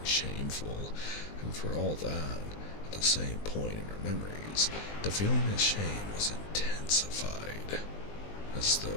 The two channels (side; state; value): right; late; 20 ms